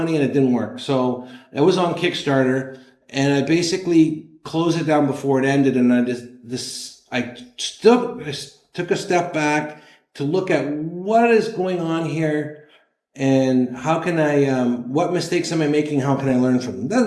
and it didn't work. So it was on Kickstarter, and I basically closed it down before it ended, and I took a step back to look at what is going on here, and how can I, what mistakes am I making? How can I learn from them?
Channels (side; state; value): both; identical; correlation 1.00